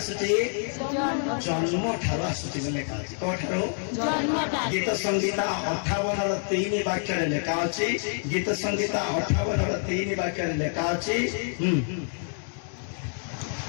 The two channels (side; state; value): right; silent; 60 dB below the other